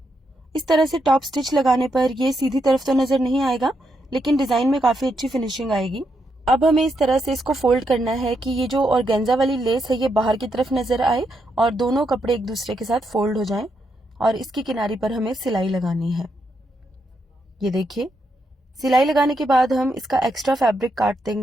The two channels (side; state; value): both; normal; correlation 0.80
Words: इस तरह से टॉप स्टिच लगाने पर ये सीधी तरफ तो नजर नहीं आएगा, लेकिन डिजाइन में काफी अच्छी फिनिशिंग आएगी। अब हमें इस तरह से इसको फोल्ड करना है कि ये जो ऑर्गेन्जा वाली लेस है ये बाहर की तरफ नजर आए और दोनों कपड़े एक दूसरे के साथ फोल्ड हो जाएं और इसकी किनारी पर हमें सिलाई लगानी है। ये देखिए, सिलाई लगाने के बाद हम इसका एक्स्ट्रा फैब्रिक काट